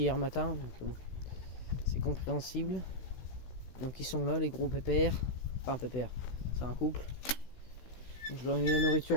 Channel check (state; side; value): late; right; 16 ms